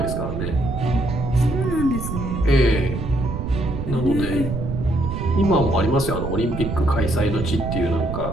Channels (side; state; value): right; noise; rumble, 4 dB below the sound